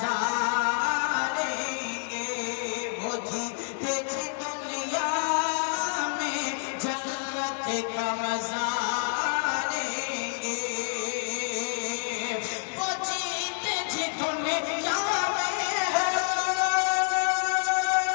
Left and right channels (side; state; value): right; silent; 59 dB below the other